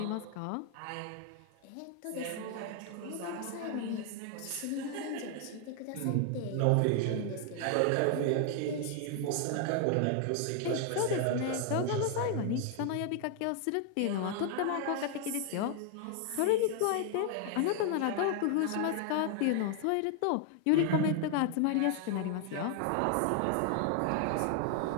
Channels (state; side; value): different; both; correlation 0.00